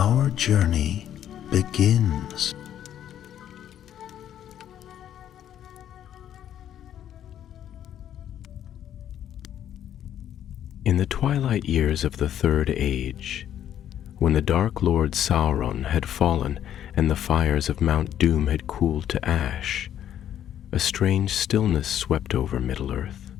journey begins. In the twilight years of the Third Age, when the Dark Lord Sauron had fallen and the fires of Mount Doom had cooled to ash, a strange stillness swept over Middle-earth.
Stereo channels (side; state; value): right; quieter; 10.6 dB